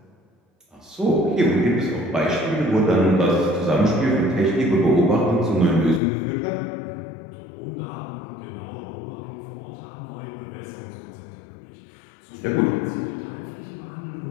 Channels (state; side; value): drops out; right; at 6.0 s